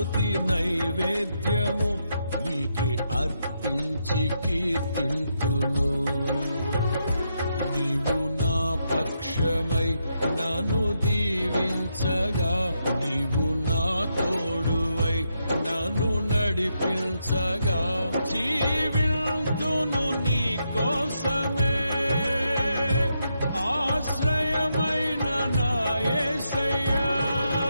నైవేద్యము నీకే అర్పించి కీర్తింతును. నీవు నా పక్షమై నన్ను దీవించగా, నీవు నా తోడువై నన్ను నడిపించగా, జీవింతును నీ కోసమే ఆశ్రయమైన నా యేసయ్యా.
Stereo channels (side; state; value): both; inverted; correlation -0.81